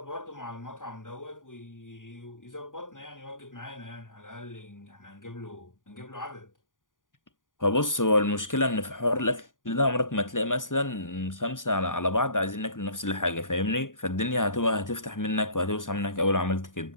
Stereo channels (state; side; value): late; right; 0.88 ms